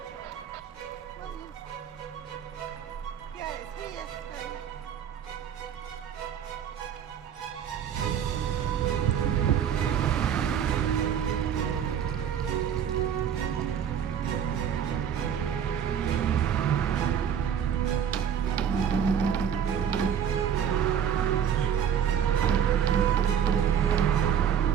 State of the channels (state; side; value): quieter; left; 8.6 dB